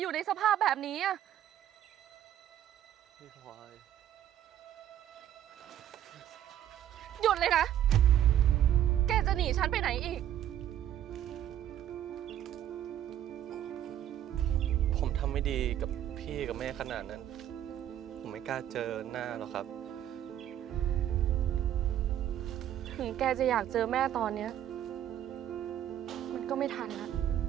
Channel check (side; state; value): left; quieter; 11.2 dB